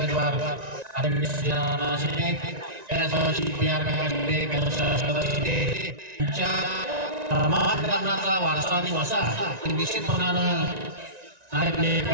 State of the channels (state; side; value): late; left; 1.9 ms